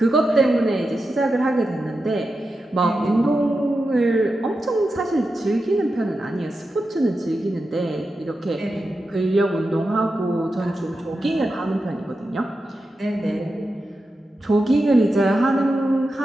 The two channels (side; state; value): both; normal; correlation 0.90